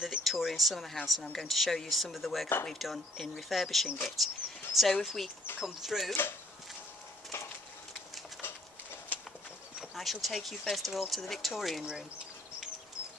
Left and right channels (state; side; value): normal; both; correlation 0.62